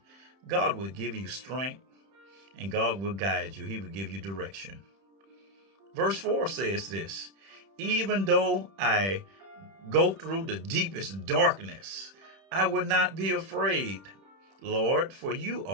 God will give you strength and God will guide you. He will give you direction. Verse 4 says this: "Even though I go through the deepest darkness, I will not be afraid, Lord, for you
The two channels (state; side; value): late; left; 31 ms